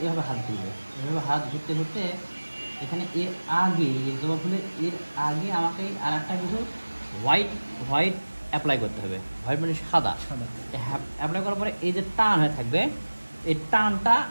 এভাবে হাত ঘুরবে, এভাবে হাত ঘুরতে ঘুরতে এখানে এর আগে জবা ফুলের এর আগে আমাকে আর একটা কিছু হোয়াইট অ্যাপ্লাই করতে হবে। হোয়াইট মানে সাদা অ্যাপ্লাই করার পরে এই যে টান হয়ে থাকবে, এই টানটা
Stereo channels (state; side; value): inverted; both; correlation -1.00